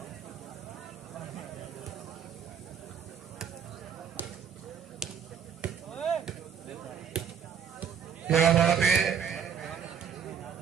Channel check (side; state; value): left; quieter; 7.6 dB